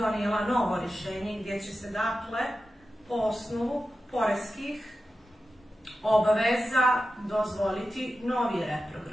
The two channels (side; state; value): both; normal; correlation 0.92